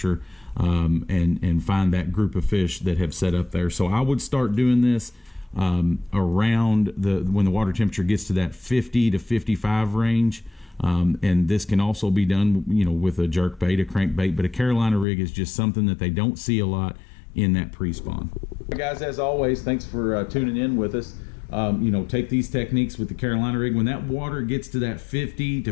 and find that group of fish that have set up there. So I would start doing this around when the water temperature gets to that 50 to 55 range. And this can also be done, with a jerk bait, a crankbait, but a Carolina rig is just something that they don't see a lot in that pre-spawn. Guys, as always, thanks for tuning in with us. Take these techniques with the Carolina rig. When that water gets to that 50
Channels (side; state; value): right; drops out; at 15.1 s